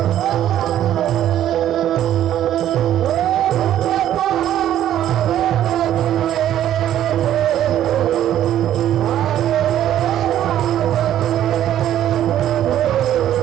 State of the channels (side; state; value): left; quieter; 11.5 dB